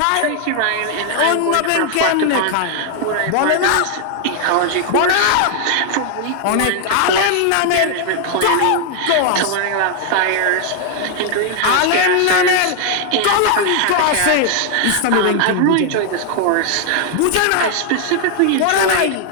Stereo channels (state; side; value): different; both; correlation 0.00